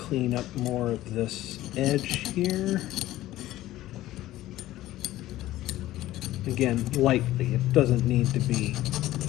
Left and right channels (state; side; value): quieter; right; 15.3 dB